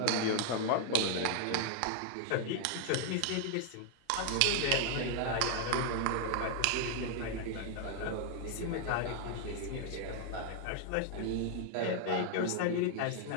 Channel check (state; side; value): different; both; correlation 0.00